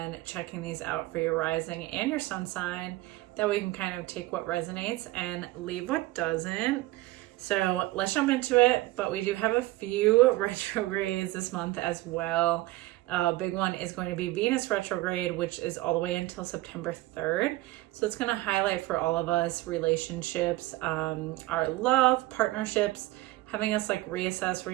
checking these out for your rising and your sun sign. That way you can kind of take what resonates and leave what doesn't. So let's jump into it, but we do have a few retrogrades this month as well. Big one is going to be Venus retrograde, which is all the way until September 3rd. So it's going to highlight for all of us relationships, our love, partnerships, having us like reassess,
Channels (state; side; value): quieter; left; 18.5 dB